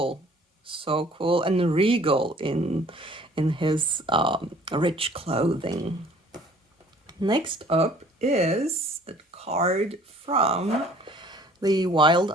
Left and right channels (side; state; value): both; normal; correlation 0.54